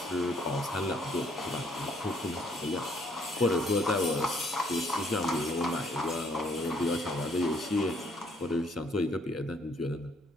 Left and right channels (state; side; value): normal; both; correlation 0.66